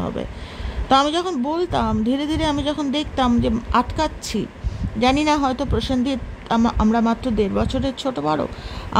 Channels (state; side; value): identical; both; correlation 1.00